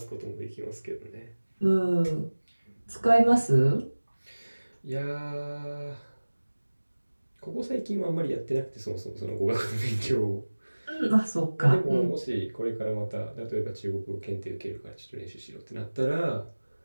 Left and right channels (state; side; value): inverted; both; correlation -1.00